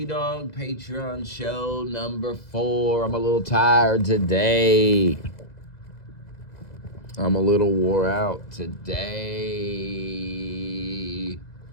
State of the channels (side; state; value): right; late; 2.0 ms